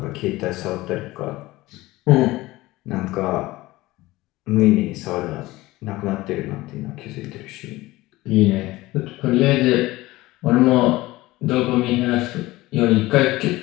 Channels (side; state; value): right; quieter; 18.8 dB